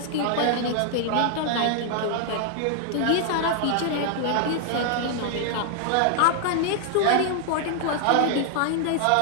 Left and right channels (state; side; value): different; both; correlation 0.00